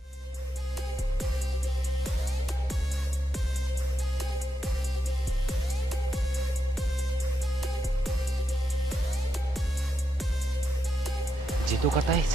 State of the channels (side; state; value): both; normal; correlation 0.84